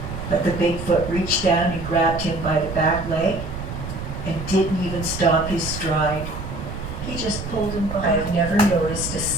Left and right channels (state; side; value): noise; right; rumble, 8 dB below the sound